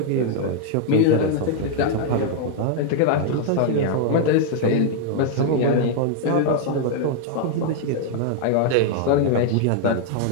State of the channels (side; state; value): both; different; correlation 0.00